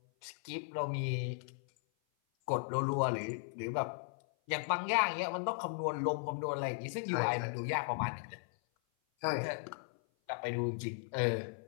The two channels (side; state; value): right; silent; 53 dB below the other